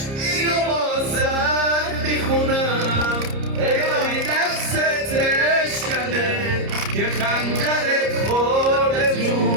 اینو بازت میخونم، الهی دستت اشکنه که خنجرت خورده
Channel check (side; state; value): left; late; 30 ms